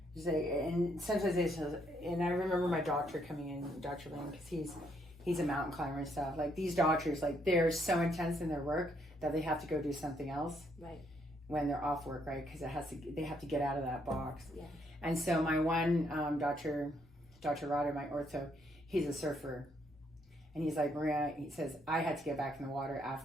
and sometimes and I remember my doctor coming in, Dr. Lane, because he's a mountain climber and stuff. Like, these doctors, like, they're so intense in their work that they have to go do something else. Right. When they're off work, right? Because they have to get out of that box. Yeah. And so my one Dr. Rotter, my ortho, he's a surfer. And he's like, Maria, he says, I had to get back in the water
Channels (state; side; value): normal; both; correlation 0.72